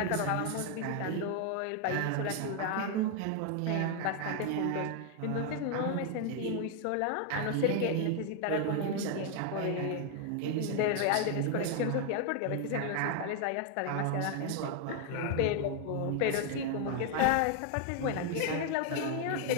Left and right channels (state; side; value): different; both; correlation 0.00